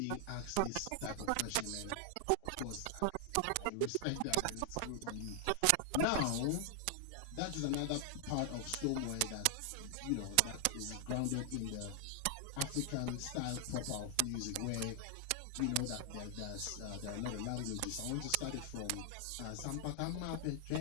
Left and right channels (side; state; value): both; different; correlation 0.00